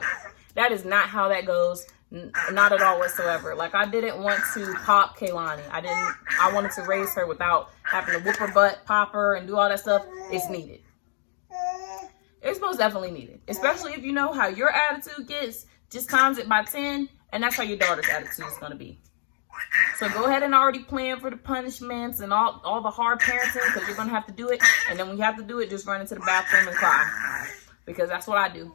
that is not how that goes. Not at all whatsoever. Like, I didn't want to pop Kaylani. I wanted to raise her without having to whoop her butt, pop her, and do all that stuff. It's needed. It's most definitely needed. Especially if you know how your attitude gets, just times it by 10, and that's how your daughter's attitude is going to be. So go ahead and already plan for the punishments and all the hard parenting, because you're going to have to do it. And then when you have to do it, just run into the bathroom and cry. Because that's what I do.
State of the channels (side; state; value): right; silent; 61 dB below the other